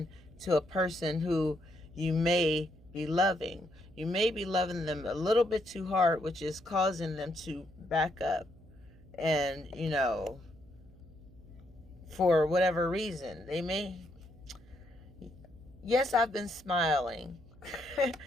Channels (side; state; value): right; noise; hum, 24 dB below the sound